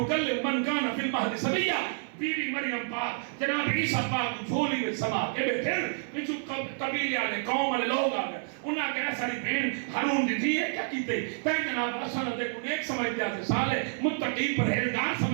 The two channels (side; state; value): left; silent; 58 dB below the other